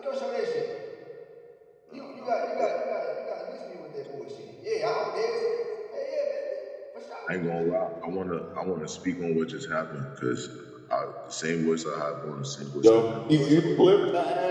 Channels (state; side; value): identical; both; correlation 1.00